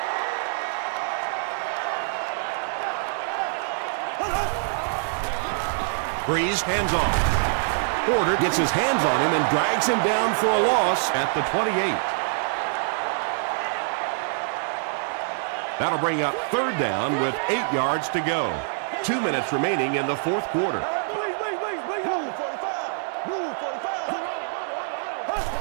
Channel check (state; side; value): silent; left; digital silence